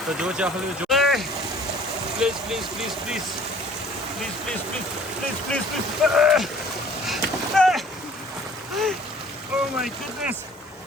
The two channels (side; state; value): both; normal; correlation 0.52